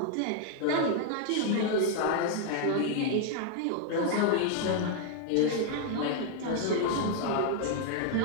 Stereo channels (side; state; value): both; different; correlation 0.00